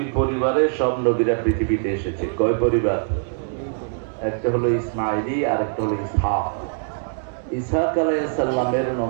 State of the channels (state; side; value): silent; left; digital silence